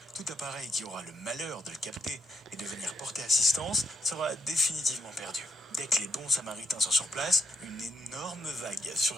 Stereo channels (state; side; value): normal; both; correlation 0.80